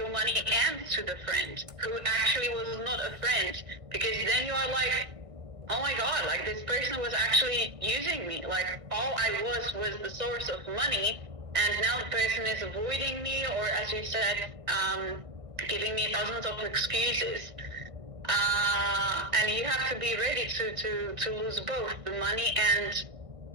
money and to the friend who actually was not a friend, because then you are like, oh my god, this person was actually using me, all I was the source of money, and now the person is avoiding me, or as you said, giving me thousands of excuses. And you have to be ready to lose both the money and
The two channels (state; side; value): late; left; 1.6 ms